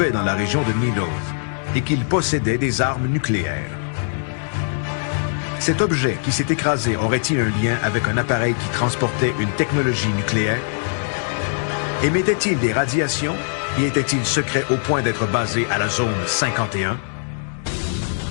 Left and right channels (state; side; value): silent; right; digital silence